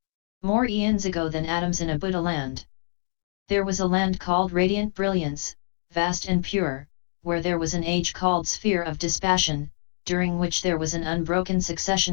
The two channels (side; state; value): right; silent; digital silence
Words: More eons ago than atoms in a Buddha land. There was a land called Radiant Brilliance, vast and pure, where there was an age called Sphere of Dispassion, during which there was an unbroken